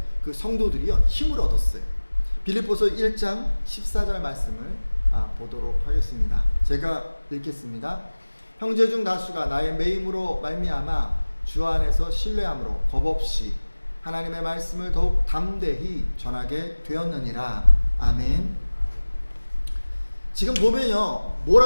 그 성도들이요, 힘을 얻었어요. 빌립보서 1장 14절 말씀을 보도록 하겠습니다. 제가 읽겠습니다. 형제 중 다수가 나의 매임으로 말미암아 주 안에서 신뢰함으로 겁없이 하나님의 말씀을 더욱 담대히 전하게 되었느니라. 아멘. 지금 보면요,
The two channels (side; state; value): both; inverted; correlation -1.00